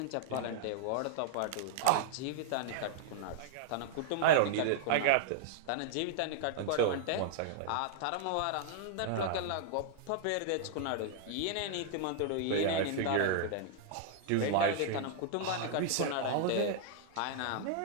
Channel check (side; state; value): both; different; correlation -0.01